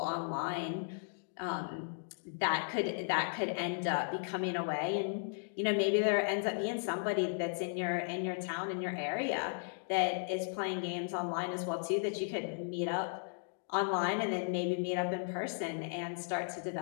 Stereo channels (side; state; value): right; silent; digital silence